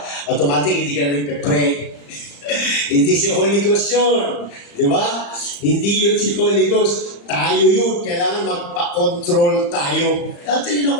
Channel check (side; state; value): right; late; 35 ms